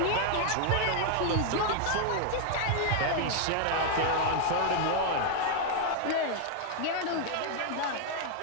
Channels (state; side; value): different; both; correlation 0.00